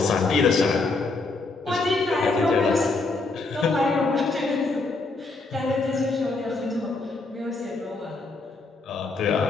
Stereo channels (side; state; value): right; quieter; 3.6 dB